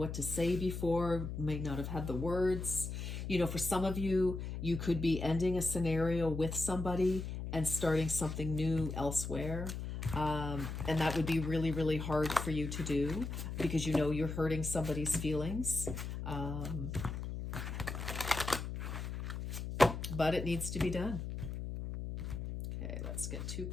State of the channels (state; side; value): noise; left; hum, 5 dB below the sound